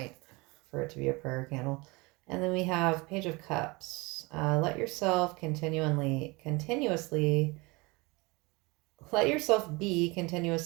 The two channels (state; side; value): quieter; left; 25.3 dB